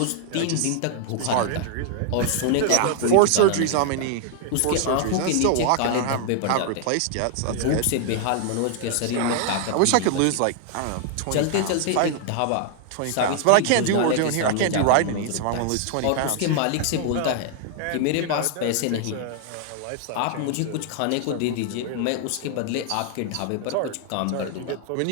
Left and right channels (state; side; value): different; both; correlation 0.00